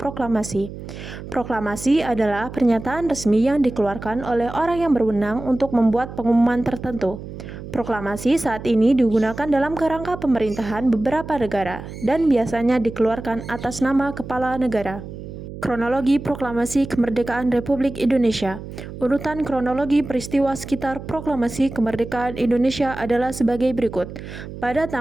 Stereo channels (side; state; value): right; noise; hum, 11 dB below the sound